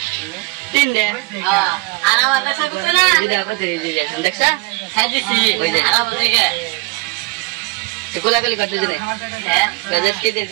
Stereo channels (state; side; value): quieter; left; 24.6 dB